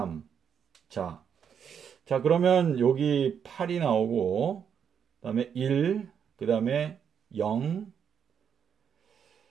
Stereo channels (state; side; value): quieter; left; 7.7 dB